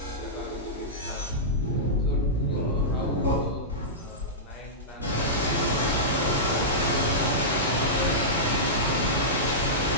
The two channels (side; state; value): both; normal; correlation -0.13